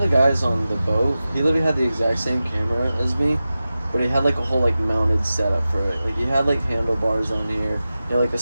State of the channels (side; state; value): both; inverted; correlation -0.94